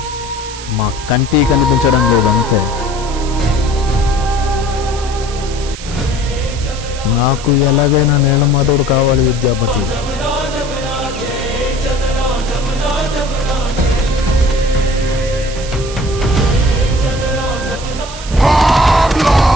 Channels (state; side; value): noise; right; hiss, 13 dB below the sound